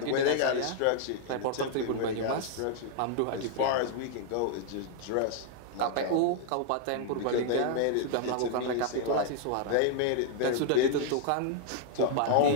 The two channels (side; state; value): both; different; correlation 0.00